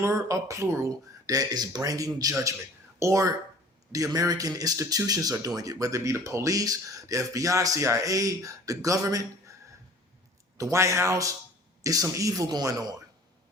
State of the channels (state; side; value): normal; both; correlation 0.47